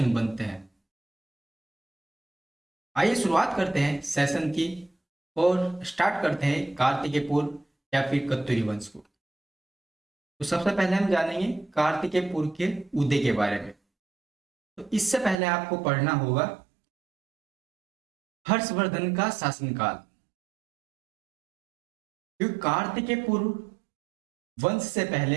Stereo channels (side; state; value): left; drops out; at 15.4 s